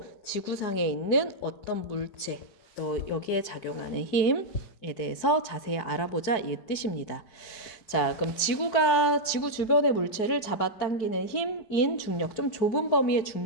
지구상에 있는 어떤 물체, 또 여기에 작용하는 힘에 대해서 자세히 알아보자 이 뜻입니다. 자, 그럼 지구 주변의 물체를 잡아당기는 힘인 중력, 좀 좁은 범위의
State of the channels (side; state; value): right; late; 4.6 ms